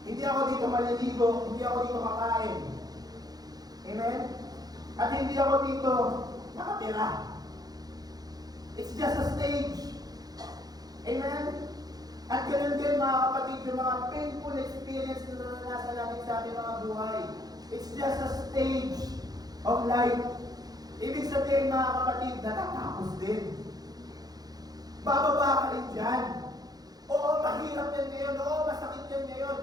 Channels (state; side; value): late; left; 0.19 ms